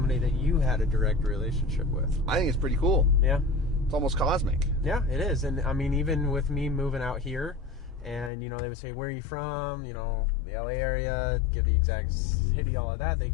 that you had a direct relationship with. I think it's pretty cool. Yeah. It's almost cosmic. Yeah, it is. And I mean, even with me moving out here, and, they would say, where are you from? The LA area, give the exact city, all of that. They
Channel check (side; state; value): right; drops out; at 8.3 s